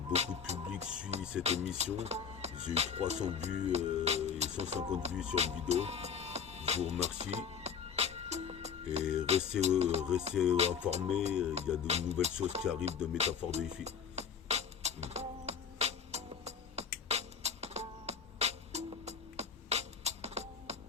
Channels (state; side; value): quieter; right; 7.0 dB